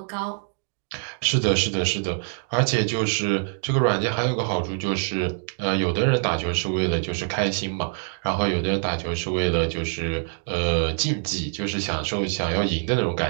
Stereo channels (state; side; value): silent; left; digital silence